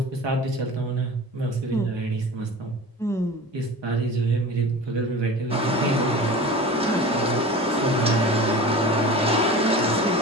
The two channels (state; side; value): normal; both; correlation 0.35